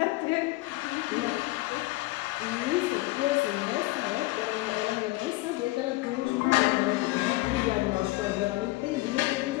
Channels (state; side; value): quieter; right; 19.9 dB